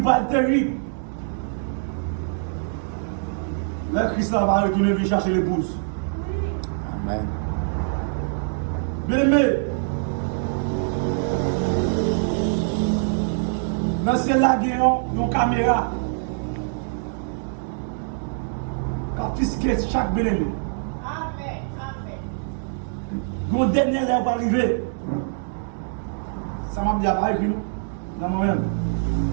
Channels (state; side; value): silent; left; digital silence